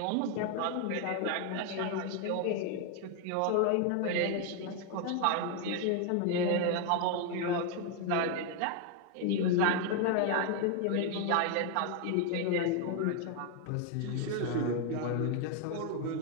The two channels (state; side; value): different; both; correlation 0.01